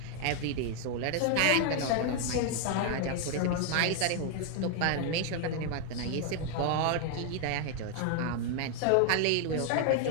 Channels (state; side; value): different; both; correlation 0.00